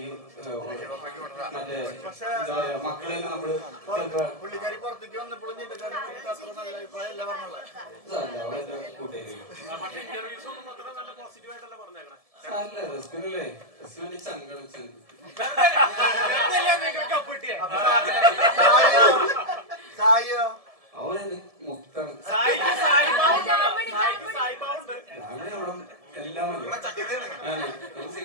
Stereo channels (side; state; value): left; late; 1.7 ms